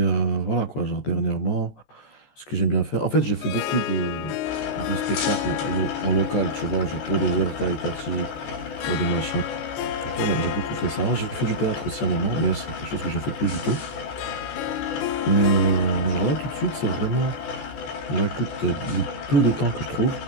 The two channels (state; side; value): late; right; 14 ms